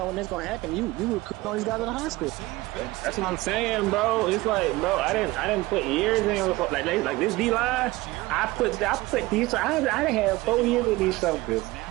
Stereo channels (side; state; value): left; quieter; 20.0 dB